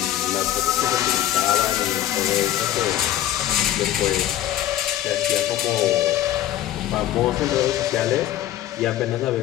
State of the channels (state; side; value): quieter; right; 12.7 dB